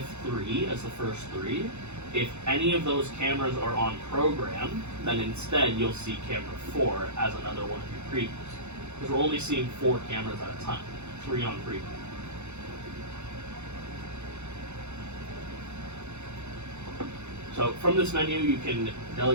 as the first 3. If any of those cameras are on program, then instead you'll see camera 4 as another one of your previews. Because we're only seeing 4 cameras at a time, 3 on preview. So from this menu, you can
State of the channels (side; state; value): left; late; 0.82 ms